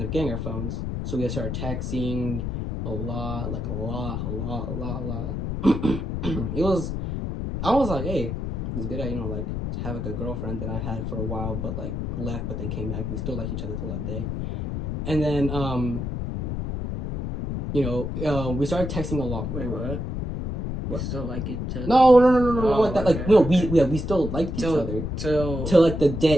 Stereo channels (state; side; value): noise; left; rumble, 3 dB below the sound